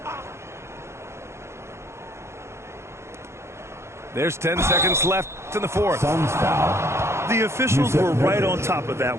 There's 10 seconds left in the fourth. Suns foul. The officials were right on top of that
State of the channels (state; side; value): late; left; 0.13 ms